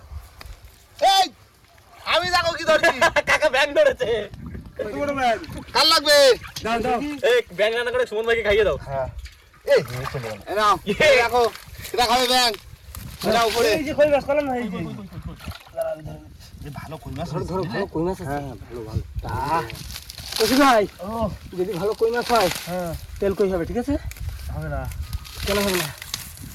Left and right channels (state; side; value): identical; both; correlation 1.00